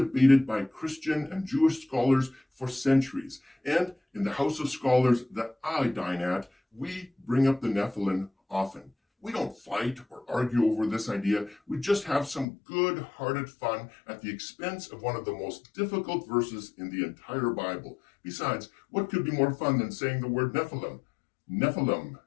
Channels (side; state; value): right; drops out; at 12.5 s